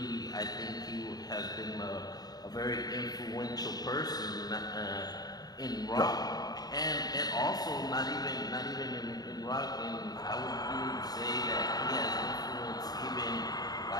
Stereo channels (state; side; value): late; right; 0.19 ms